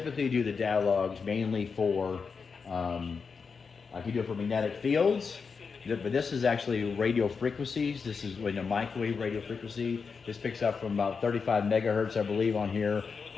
do the data logs mainly for, I can do it for magnetic fields. But this is actually radio frequencies. This is in a microwave radio frequency. This picks up from about 35 megahertz, I believe, on here,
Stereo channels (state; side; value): quieter; right; 5.4 dB